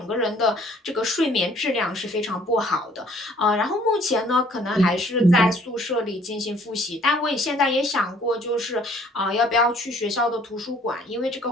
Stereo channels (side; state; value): both; normal; correlation 0.58